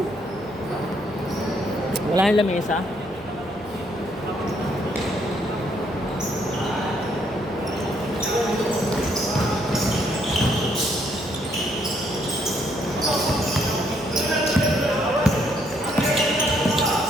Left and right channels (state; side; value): normal; both; correlation 0.70